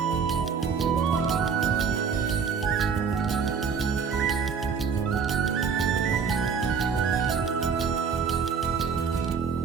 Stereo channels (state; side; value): quieter; left; 6.1 dB